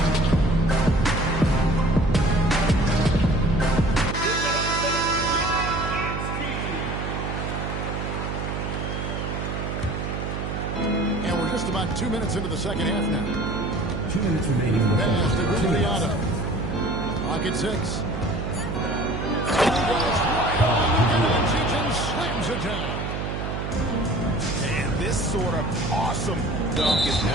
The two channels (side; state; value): right; noise; hum, 4 dB below the sound